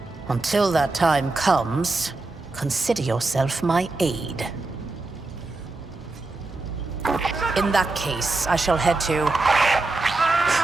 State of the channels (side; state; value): left; quieter; 3.3 dB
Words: Until that time comes, consider yourself my aide. In that case, I shall head to...